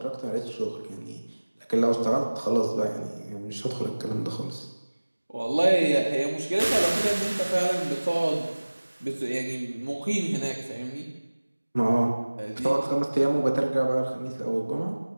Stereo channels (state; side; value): inverted; both; correlation -1.00